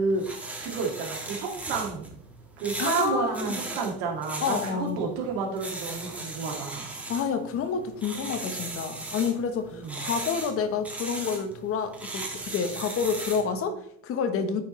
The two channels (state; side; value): normal; both; correlation 0.14